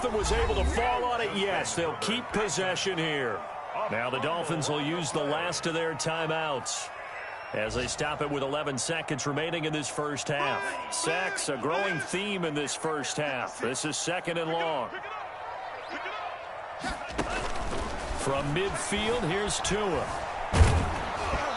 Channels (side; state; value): both; identical; correlation 1.00